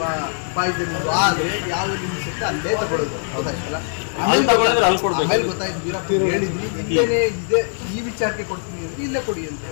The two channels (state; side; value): silent; right; 62 dB below the other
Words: ಪಾಯ್ಸನಿಂಗ್ ಆದ್ರೆ ಯಾವ್ದು ಲಿಮಿಟ್ಸ್ ಇರುತ್ತೆ ಅಲ್ಲೇ ತಗೊಳ್ಳೋದು. ಹೌದಾಯ್ತಲ್ಲ, ಆಮೇಲೆ ಗೊತ್ತಾಯ್ತು ವೀರಪ್ಪ ಹೇಳಿದ್ವಿ ಇಲ್ಲೇನೆ ಇದೆ, ಈ ವಿಚಾರಕ್ಕೆ ಕೊಡ್ತೀನಿ ಅಂದ್ರೆ ಇಲ್ಲೇ ಕೊಡಿ ಅಂತ